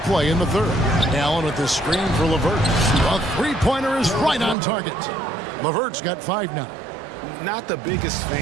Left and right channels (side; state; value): left; drops out; at 4.5 s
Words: in the third. Allen with the screen for LeVert. A three-pointer is right on target. LeVert's got 5 now. Not the biggest